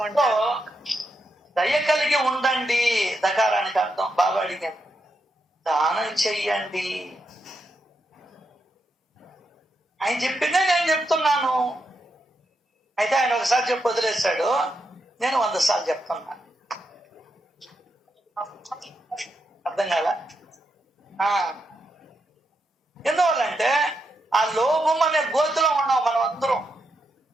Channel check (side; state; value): both; normal; correlation 0.83